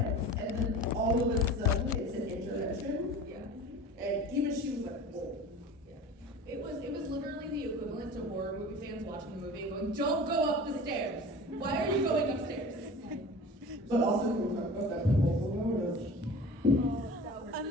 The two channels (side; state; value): both; normal; correlation 0.38